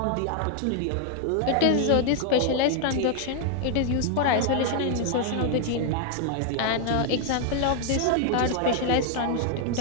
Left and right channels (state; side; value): different; both; correlation 0.00